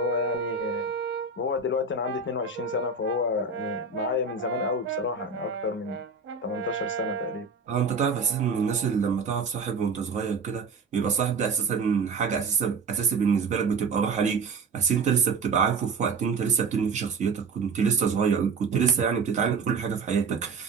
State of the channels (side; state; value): left; quieter; 4.5 dB